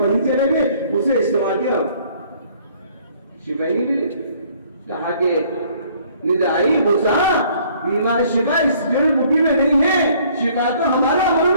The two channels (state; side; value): inverted; both; correlation -0.59